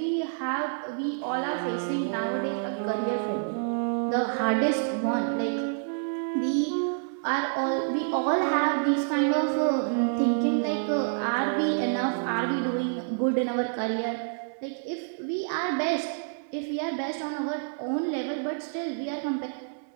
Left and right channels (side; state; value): left; silent; digital silence